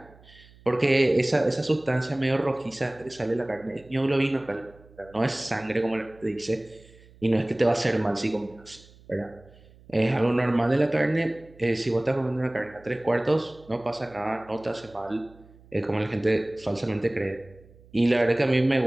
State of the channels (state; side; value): noise; right; hum, 25 dB below the sound